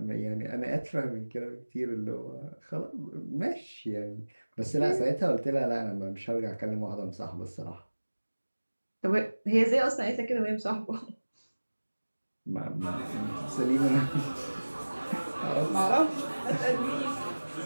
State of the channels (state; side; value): inverted; both; correlation -1.00